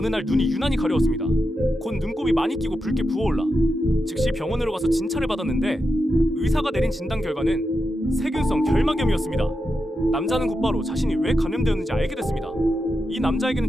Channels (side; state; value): both; normal; correlation 0.88